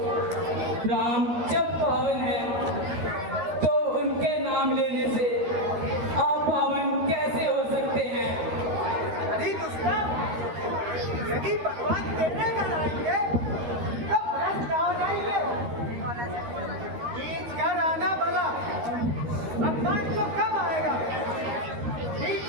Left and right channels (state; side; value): late; left; 13 ms